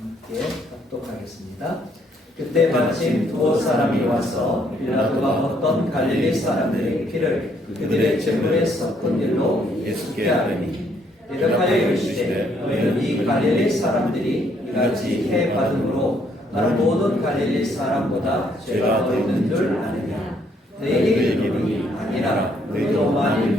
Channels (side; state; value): both; normal; correlation 0.69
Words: 합독하겠습니다. 그때 마침 두 사람이 와서 빌라도가 어떤 갈릴리 사람들의 피를 그들의 재물에 섞은 일로 예수께 하더니 대답하여 이르시되 너희는 이 갈릴리 사람들이 이같이 해 받음으로 다른 모든 갈릴리 사람보다 죄가 더 있는 줄 아느냐. 너희에게 이르노니 아니라 너희도 만일